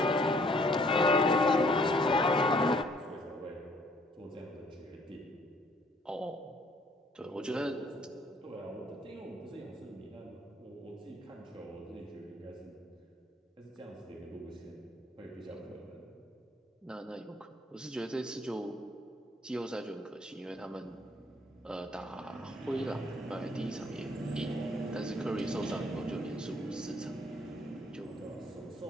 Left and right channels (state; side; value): normal; both; correlation 0.62